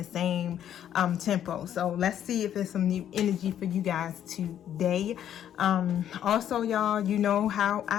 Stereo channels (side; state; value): right; quieter; 10.3 dB